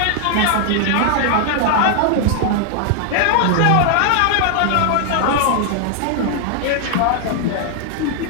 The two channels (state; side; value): different; both; correlation 0.00